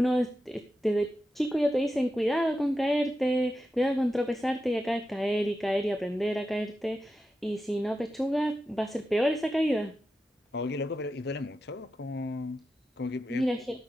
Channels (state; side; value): normal; both; correlation 0.90